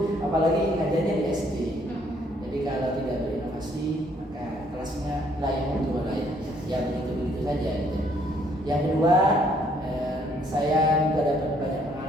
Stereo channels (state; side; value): normal; both; correlation 0.66